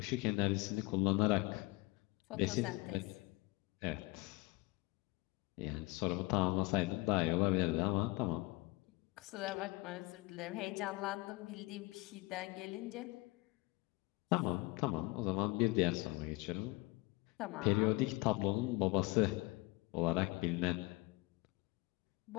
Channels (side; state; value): right; quieter; 22.1 dB